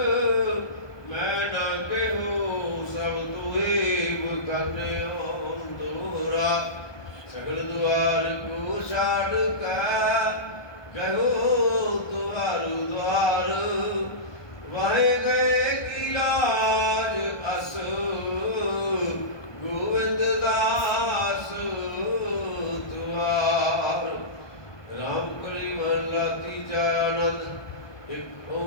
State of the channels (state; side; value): late; right; 1.2 ms